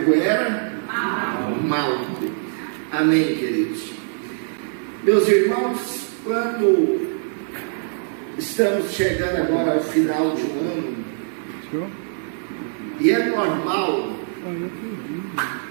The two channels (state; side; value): silent; left; digital silence